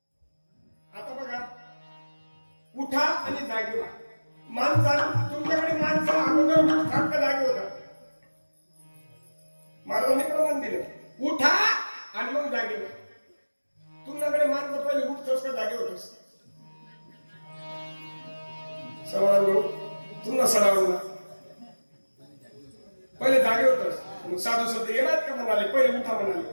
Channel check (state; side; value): inverted; both; correlation -1.00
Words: आता बघा, उठा आणि जागे व्हा. तुमच्याकडे माणसं अगोदर सारखं जागे होतात. महाराजांनी प्रमाण दिलं, उठा आणि मग जागे व्हा. तुमच्याकडे माणसं पहिले उठतोस का जागे होतोस? सवाल तुमचा सराव पहिले जागे होतोस, मग साधू संत येणार का म्हणाले, पहिले उठा म्हणाले.